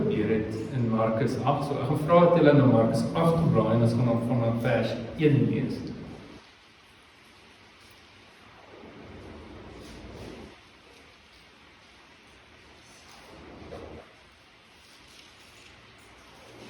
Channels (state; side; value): identical; both; correlation 1.00